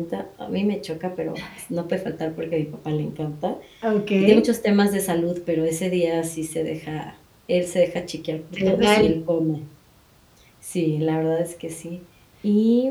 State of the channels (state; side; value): identical; both; correlation 1.00